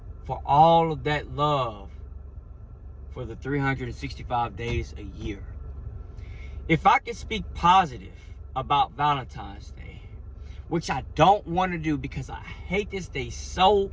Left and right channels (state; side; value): identical; both; correlation 1.00